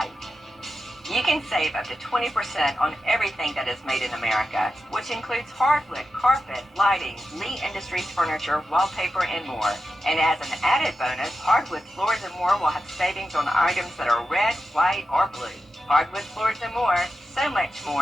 You can save up to 20% on everything that is made in America, which includes hardwood, carpet, lighting, Lee Industries furniture, wallpaper, and more. And as an added bonus, Hardwood Floors and More will have savings on items that are red, white, or blue. Hardwood Floors and More, so much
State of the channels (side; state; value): both; normal; correlation 0.91